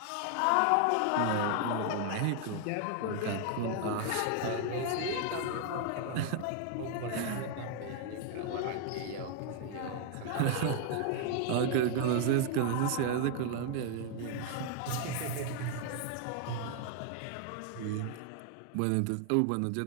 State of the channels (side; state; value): both; different; correlation 0.00